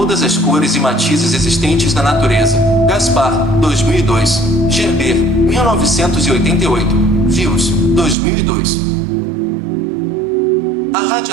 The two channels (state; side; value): drops out; left; at 8.2 s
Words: as cores e matizes existentes na natureza. Gaspar, 2002. Gerber, 1988. Views, 2002. A